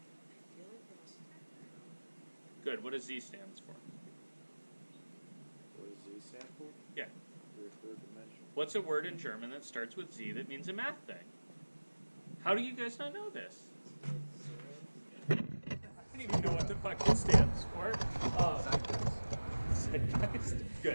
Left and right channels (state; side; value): inverted; both; correlation -1.00